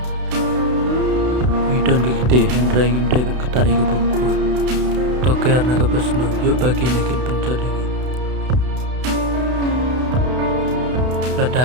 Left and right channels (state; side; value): late; left; 32 ms